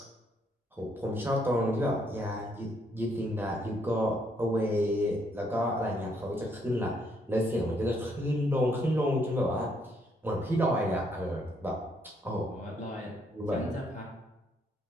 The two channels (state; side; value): normal; both; correlation 0.72